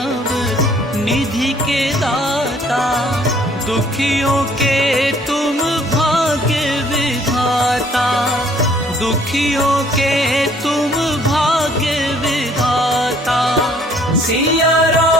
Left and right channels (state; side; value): normal; both; correlation 0.60